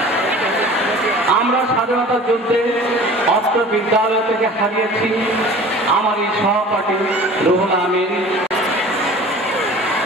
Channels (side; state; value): both; normal; correlation 0.43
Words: আমরা স্বাধীনতা যুদ্ধে অত্র বিদ্যালয় থেকে হারিয়েছি আমার এই সহপাঠী রুহুল আমিন,